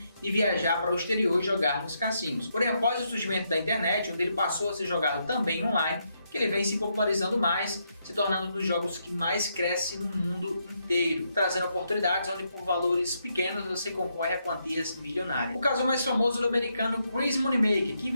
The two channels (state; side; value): inverted; both; correlation -0.79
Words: de viajar para o exterior e jogar nos cassinos. Porém, após o surgimento da internet, onde ele passou a ser jogado também online, que ele vem se popularizando mais, se tornando um dos jogos que mais cresce no mundo inteiro, trazendo oportunidades onde por valores pequenos você concorre a quantias milionárias. O caso mais famoso do americano Chris Moneymaker, que